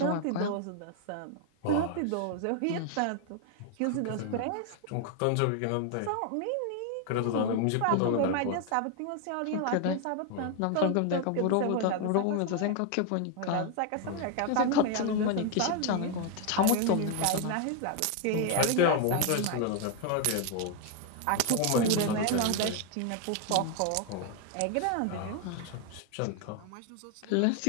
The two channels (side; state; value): both; different; correlation 0.01